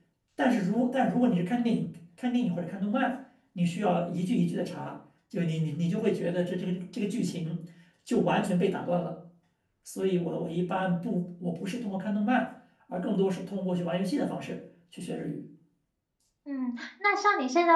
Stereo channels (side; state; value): both; identical; correlation 1.00